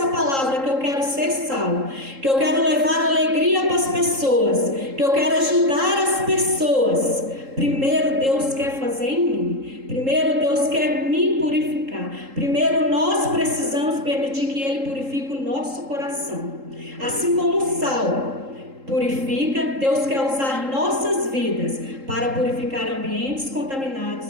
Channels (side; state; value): left; late; 3.7 ms